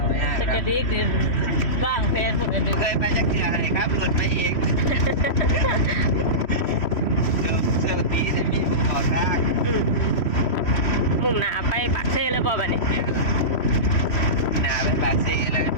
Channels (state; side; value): late; right; 3.1 ms